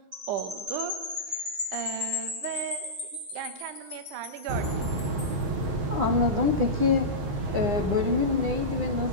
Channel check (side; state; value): left; late; 10 ms